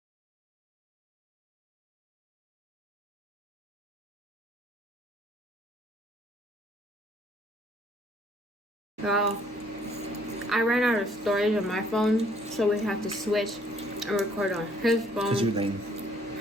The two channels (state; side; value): normal; both; correlation 0.63